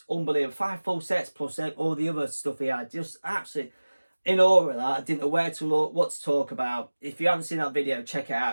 unbelievable. 5 full sets plus all the other stuff he had. Just absolutely in awe of that. I didn't know where to look, what to talk about. If you haven't seen that video, check it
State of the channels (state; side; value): inverted; both; correlation -1.00